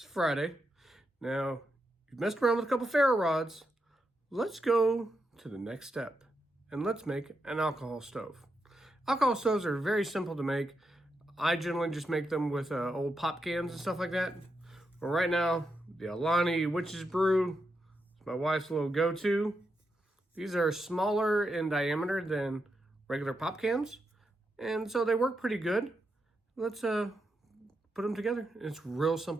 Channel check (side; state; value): both; normal; correlation 0.85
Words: Friday. Now, you've messed around with a couple ferro rods. Let's go to the next step, and let's make an alcohol stove. Alcohol stoves are very simple to make. I generally just make them with old pop cans and stuff like that. But right now, the Alani Witch's Brew is my wife's little go-to. These are smaller in diameter than regular pop cans, and so they work pretty good. Let's put them together. It's real